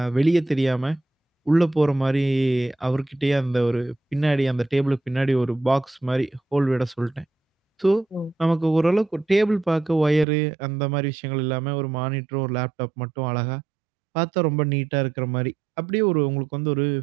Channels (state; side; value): drops out; left; at 10.2 s